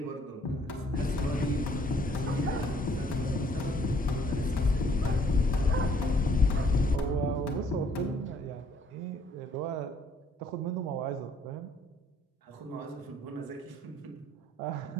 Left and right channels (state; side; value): normal; both; correlation 0.64